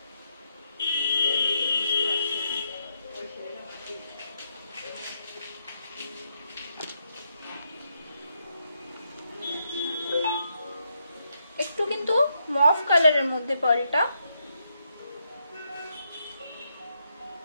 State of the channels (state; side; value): inverted; both; correlation -0.79